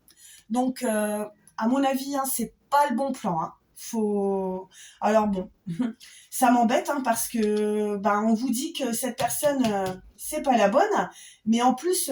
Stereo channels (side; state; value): both; identical; correlation 1.00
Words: Donc, à mon avis, c'est pas le bon plan. Faut... Alors bon, ça m'embête parce que on vous dit que cette personne c'est pas la bonne, mais en plus